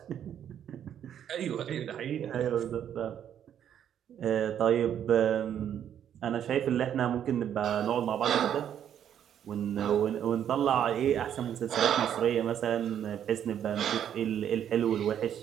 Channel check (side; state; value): left; quieter; 9.6 dB